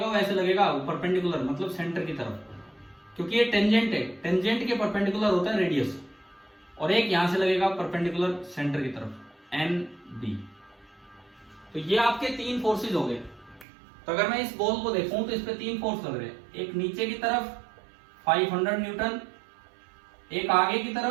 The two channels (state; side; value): drops out; left; at 13.7 s